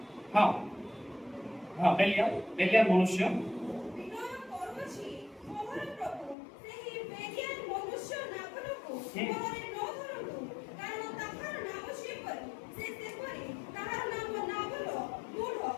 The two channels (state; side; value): drops out; right; at 6.4 s